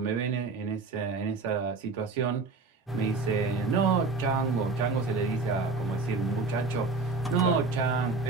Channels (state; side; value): quieter; left; 4.0 dB